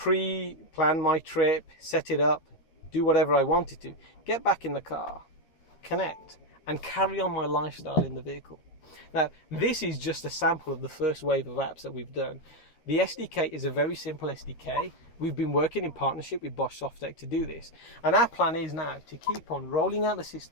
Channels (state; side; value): late; right; 13 ms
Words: my trip, set it up, do whatever I wanted to, get back in the car, connect, and carry on my lifestyle in the vehicle. Now, this is just a sample of the first wave of apps that we've done. The SDK is a very simple SDK. We've been working in partnership with Bosch Softec to do this. And our plan is now to keep on rolling out the